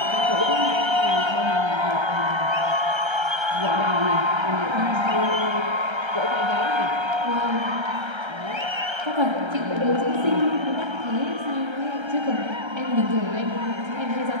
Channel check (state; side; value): late; left; 1.3 ms